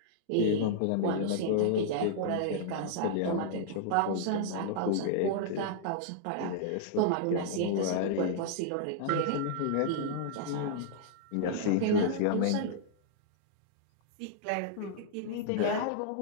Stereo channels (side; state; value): both; different; correlation -0.01